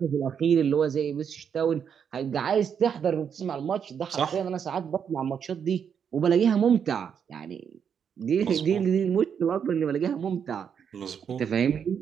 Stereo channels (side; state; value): left; quieter; 7.5 dB